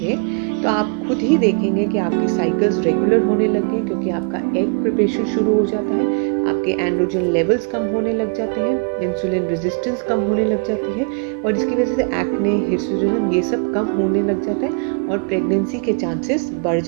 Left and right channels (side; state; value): left; quieter; 38.6 dB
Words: तो आप खुद ही देखेंगे कि आपकी साइकिल्स रेगुलर होने लगे, क्योंकि आपका एग प्रिपरेशन शुरू हो जाता है, आपके एंड्रोजन लेवल्स कम होने लग जाते हैं, इंसुलिन रेजिस्टेंस कम होने लग जाती है और इसकी वजह से एक्ने, हिर्सुटिज्म ये सब कम होने लग जाता है और प्रेगनेंसी के चांसेस बढ़